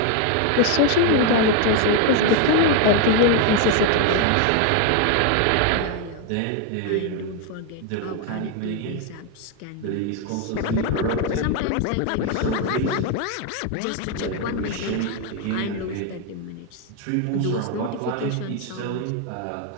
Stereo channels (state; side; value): different; both; correlation 0.01